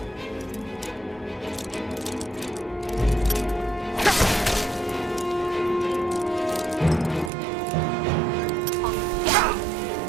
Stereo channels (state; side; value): drops out; left; at 7.3 s